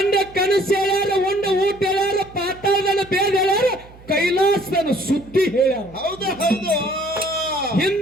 ಕನಸು ಹೇಳ್ಯಾರ, ಉಂಡ ಊಟ ಹೇಳ್ಯಾರ, ಪಾತಾಳದನ್ನ ಬೇದ ಹೇಳ್ಯಾರ, ಕೈಲಾಸದನ್ನ ಸುದ್ದಿ ಹೇಳ್ಯಾರ. ಹೌದು ಹೌದು.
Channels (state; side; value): noise; right; hum, 22 dB below the sound